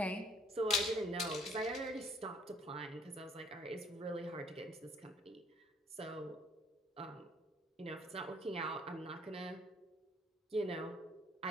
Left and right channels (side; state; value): both; normal; correlation 0.61